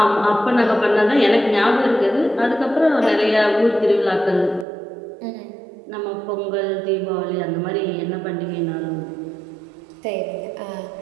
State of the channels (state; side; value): drops out; left; at 4.7 s